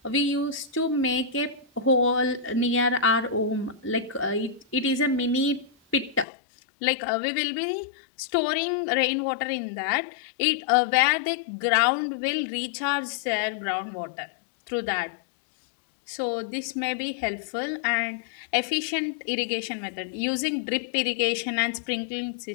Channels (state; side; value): drops out; right; at 6.2 s